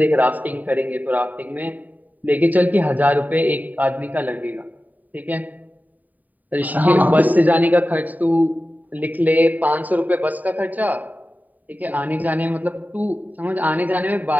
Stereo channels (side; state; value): left; late; 0.080 ms